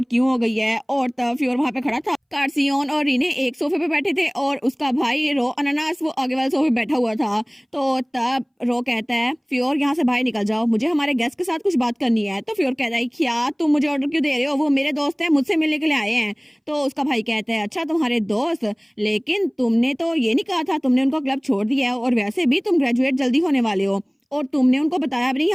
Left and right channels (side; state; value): both; identical; correlation 1.00